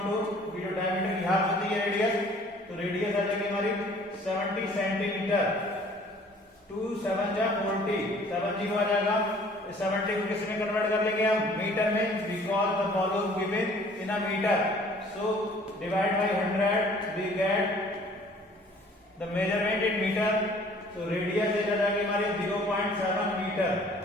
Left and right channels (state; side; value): normal; both; correlation 0.54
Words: जो डायमीटर की हाफ होती है रेडियस, तो रेडियस आ जाएगी हमारी 70 सेंटीमीटर. 2 7 जा 40, 70 आ जाएगा. 70 को किस में कन्वर्ट कर लेंगे हम, मीटर में, because the volume given in a metre. So divide by 100 we get the measurement in metre. तो रेडियस आ जाएगी हमारी 0.7 metre.